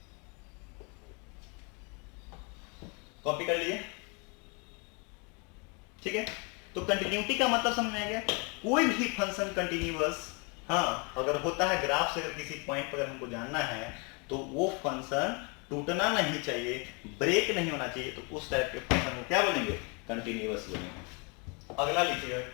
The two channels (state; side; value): quieter; right; 32.6 dB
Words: कॉपी कर लिए, ठीक है। तो कंटिन्यूटी का मतलब समझ में आ गया? कोई भी फंक्शन कंटिन्यूअस, हाँ, अगर होता है ग्राफ से, अगर किसी पॉइंट पर हमको जानना है, तो वो फंक्शन टूटना नहीं चाहिए, ब्रेक नहीं होना चाहिए, तो उस टाइप के फंक्शन को क्या बोलेंगे? कंटिन्यूअस बोलेंगे। अगला लिखिएगा